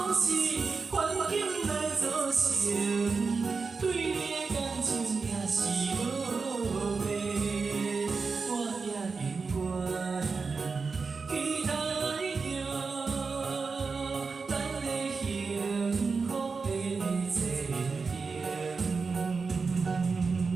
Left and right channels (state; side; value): quieter; left; 4.6 dB